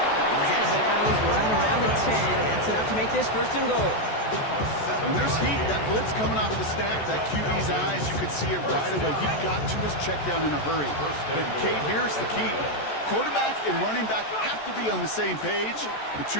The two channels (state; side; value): late; right; 14 ms